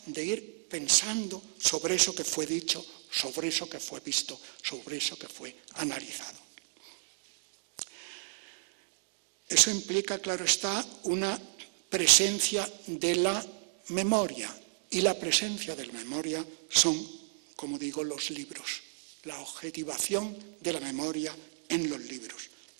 de ir pensando sobre eso que fue dicho, sobre eso que fue visto, sobre eso que fue analizado. Eso implica, claro está, una presencia de la memoria, y la presencia de la memoria son, como digo, los libros, la objetivación de la memoria en los libros.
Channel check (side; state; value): left; silent; digital silence